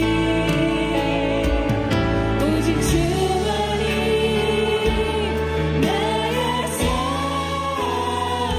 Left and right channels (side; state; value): both; identical; correlation 1.00